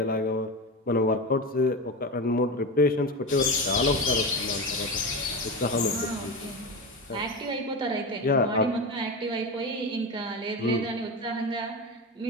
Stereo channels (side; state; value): both; normal; correlation 0.21